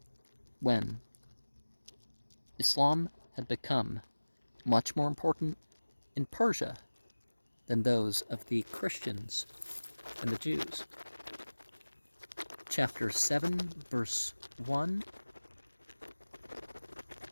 when Islam had become much more important in Persia than those of the Christians and the Jews. Chapter 7, verse 1.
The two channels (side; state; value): both; inverted; correlation -1.00